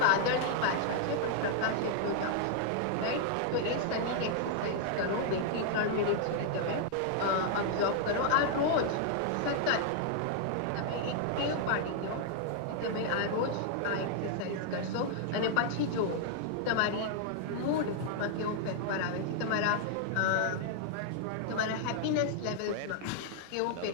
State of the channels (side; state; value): both; different; correlation -0.01